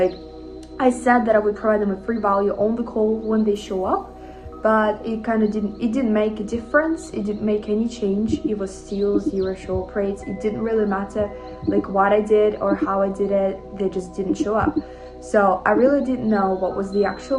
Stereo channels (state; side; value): identical; both; correlation 1.00